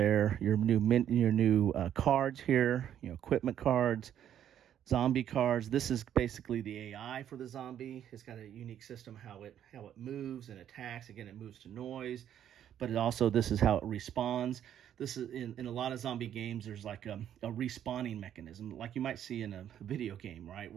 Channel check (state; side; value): quieter; left; 10.2 dB